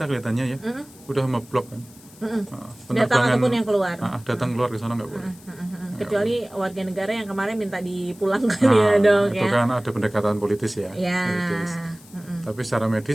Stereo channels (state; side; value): noise; left; hiss, 24 dB below the sound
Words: kelihatannya ya udah memblok kan, Datang ataupun yang keluar, datang keluar ke sana nggak boleh, kecuali warga negara yang kemarin minta dipulangkan ya dok itu ya. kan ada pendekatan politis ya, politis. Tapi secara